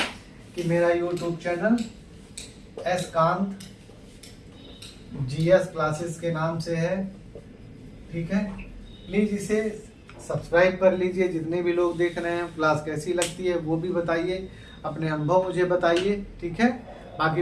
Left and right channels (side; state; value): both; identical; correlation 1.00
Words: कि मेरा YouTube channel S Kant GS classes के नाम से है। ठीक है, प्लीज़ इसे सब्सक्राइब कर लीजिए। जितने भी लोग देख रहे हैं क्लास कैसी लगती है वो भी बताइए, अपने अनुभव मुझे बताइए। ठीक है, बाकी